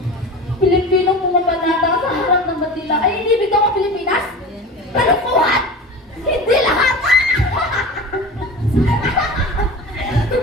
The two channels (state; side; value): normal; both; correlation 0.33